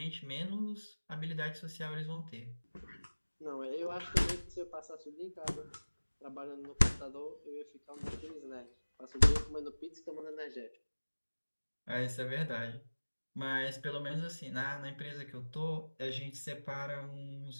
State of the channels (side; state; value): both; inverted; correlation -1.00